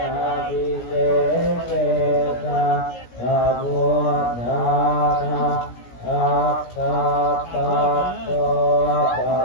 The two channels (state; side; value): late; right; 17 ms